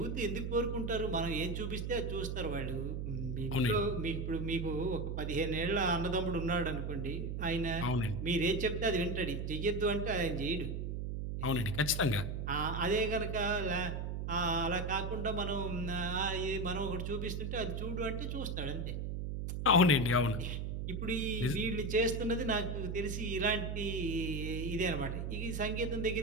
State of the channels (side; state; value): right; noise; hum, 3 dB below the sound